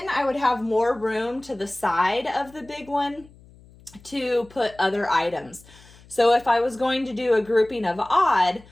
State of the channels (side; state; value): left; noise; hum, 25 dB below the sound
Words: I would have more room to the side of the big one to put other items. So if I was going to do a grouping of odd,